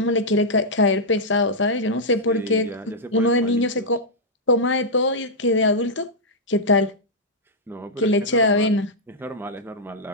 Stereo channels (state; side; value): normal; both; correlation -0.07